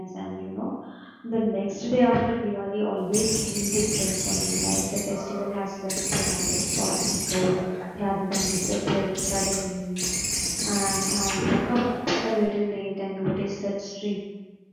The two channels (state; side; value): identical; both; correlation 1.00